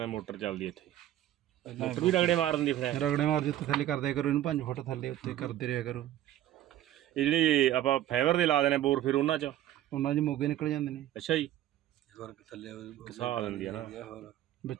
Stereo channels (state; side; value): quieter; left; 12.9 dB